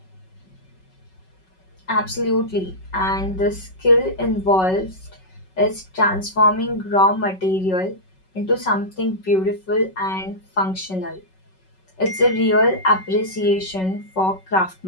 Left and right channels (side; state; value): right; late; 5.3 ms